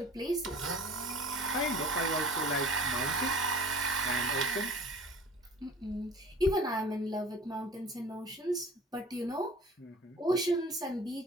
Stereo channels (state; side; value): normal; both; correlation 0.44